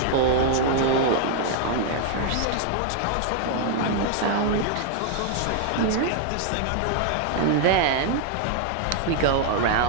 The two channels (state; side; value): different; both; correlation 0.00